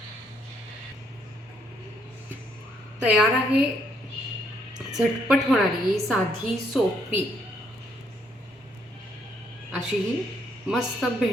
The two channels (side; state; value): both; normal; correlation 0.71